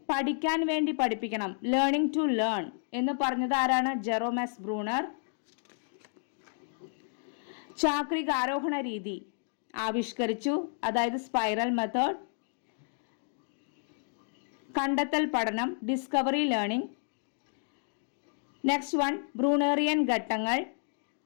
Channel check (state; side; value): silent; right; digital silence